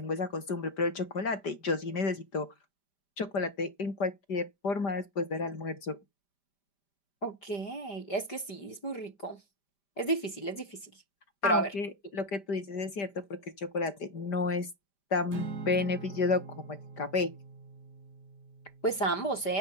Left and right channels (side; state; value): right; late; 5.0 ms